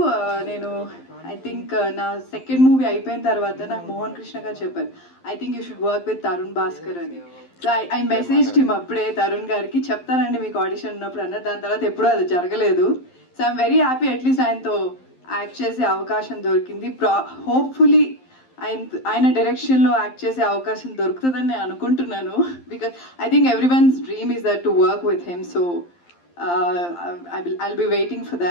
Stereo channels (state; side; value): late; right; 11 ms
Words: నేను ఐ థింక్ నా సెకండ్ మూవీ అయిపోయిన తర్వాత నాకు మోహన్ కృష్ణ గారు చెప్పారు, I think you should work with Tharun Bhascker అని. సో ఐ మెసేజ్ హిమ్ అప్పుడే తరుణ్ గారికి, చెప్తానండి మీకు ఆడిషన్ ఉన్నప్పుడు అన్నారు. దాని తర్వాత ఎప్పుడూ అది జరగలేదు. So I'm very happy, at least ఆయనతో యాక్ట్ చేసే అవకాశం దొరికింది. హోప్ఫుల్లీ ఆయన డైరెక్షన్లో యాక్ట్ చేసే అవకాశం దొరుకుతుందని నేను అనుకుంటున్నాను, because I think every once dream is that to work with him. So I'll be waiting for